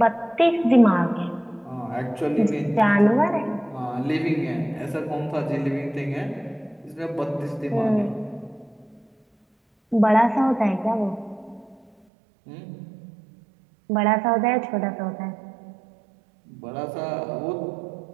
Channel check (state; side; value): drops out; left; at 11.9 s